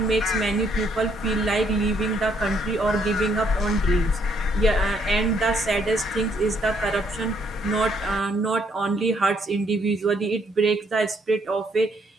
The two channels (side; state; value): both; normal; correlation 0.70